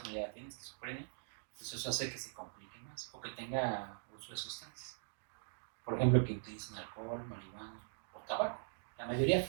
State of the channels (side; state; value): left; silent; digital silence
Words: tienen esquizofrenia, pues eso hace que se complique más, o que tenga uso de sustancias. Por ejemplo, que utilicen alcohol, marihuana o tabaco. La mayoría